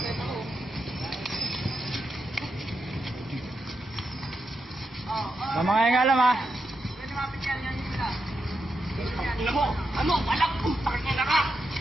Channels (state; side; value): normal; both; correlation 0.85